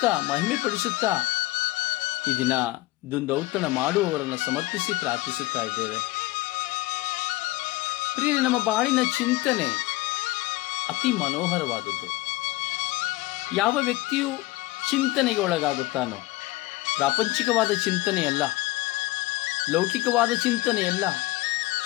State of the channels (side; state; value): right; quieter; 19.6 dB